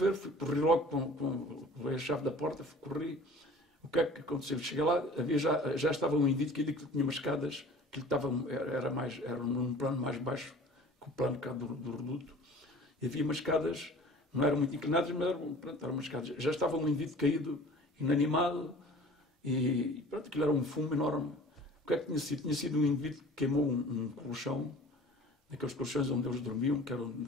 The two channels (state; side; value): normal; both; correlation 0.46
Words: corri logo com a chave da porta, corri. O que é que aconteceu? Cheguei lá, já estava um indivíduo que tinha umas escadas, que era num plano mais baixo que o plano cá do reduto, e havia umas escadas, não eram muito inclinadas, mas eram umas escadas. Já estava um indivíduo caído, inanimado, e pronto, aquilo era um fumo enorme. O que é que tinha sido? Tinha sido um indivíduo que queimou um colchão, daqueles colchões onde eles dormiam, que eram